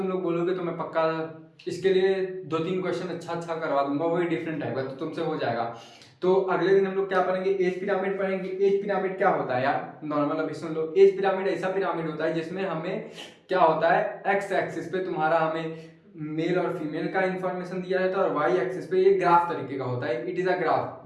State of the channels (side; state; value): both; identical; correlation 1.00